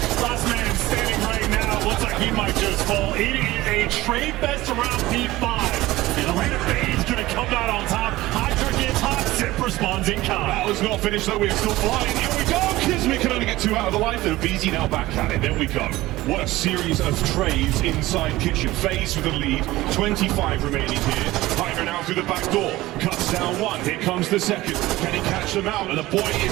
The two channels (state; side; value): quieter; left; 17.7 dB